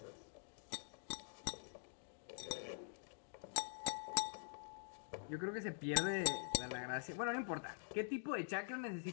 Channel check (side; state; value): right; silent; digital silence